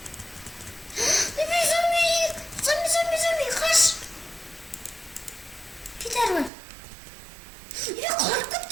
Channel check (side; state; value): left; drops out; at 6.5 s